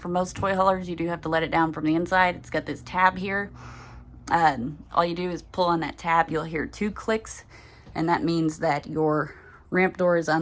from most toy haulers. You do have to let it down from the inside. It's got this tab here. All you do is pull on that tab. You'll hear 2 clicks, and that means that your ramp door is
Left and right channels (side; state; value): both; identical; correlation 1.00